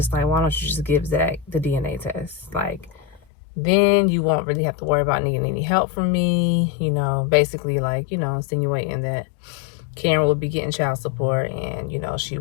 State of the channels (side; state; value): right; drops out; at 3.2 s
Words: like, why don't you just give Zach the DNA test? Like, then you won't really have to worry about needing any help from me. Basically, like, insinuating that Karen will be getting child support, and, she